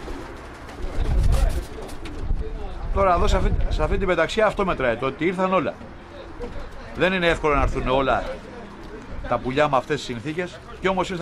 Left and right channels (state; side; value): identical; both; correlation 1.00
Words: Τώρα εδώ σε αυτή την πεταξιά αυτό μετράει, το ότι ήρθαν όλα. Δεν είναι εύκολο να έρθουν όλα τα πουλιά με αυτές τις συνθήκες και όμως